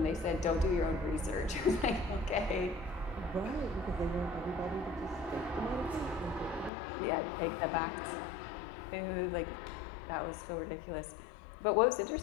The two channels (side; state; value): right; drops out; at 6.7 s